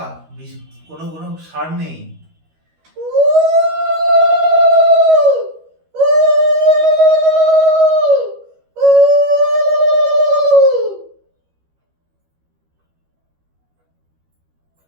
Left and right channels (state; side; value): late; left; 13 ms